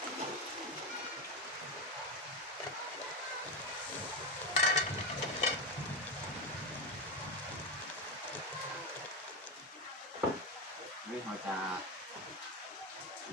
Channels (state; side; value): normal; both; correlation 0.14